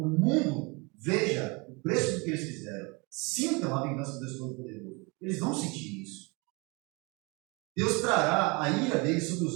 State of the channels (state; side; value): quieter; left; 28.2 dB